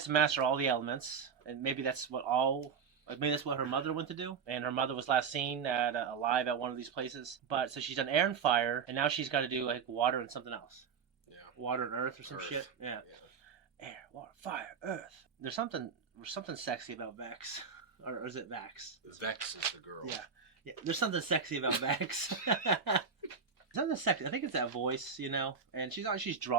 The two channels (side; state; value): left; quieter; 6.2 dB